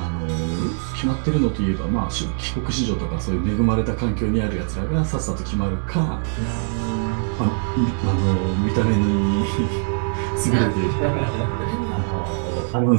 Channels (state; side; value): silent; left; 60 dB below the other